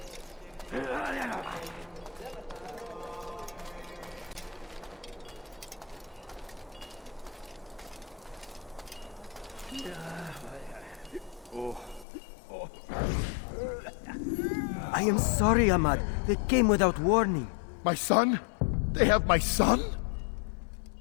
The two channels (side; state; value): right; drops out; at 12.1 s